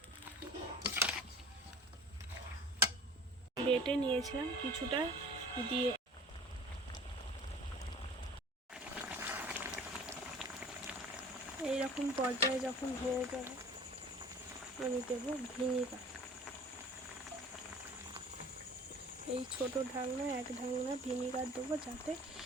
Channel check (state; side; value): normal; both; correlation 0.44